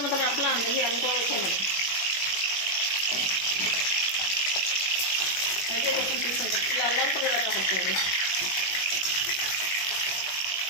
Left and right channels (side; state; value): right; late; 21 ms